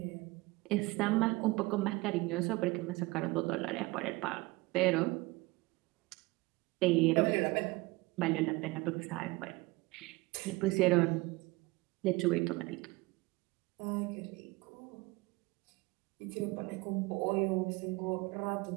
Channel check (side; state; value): left; quieter; 22.7 dB